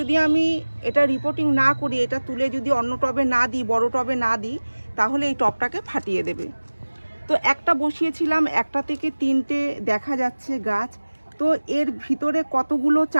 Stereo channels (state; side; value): inverted; both; correlation -1.00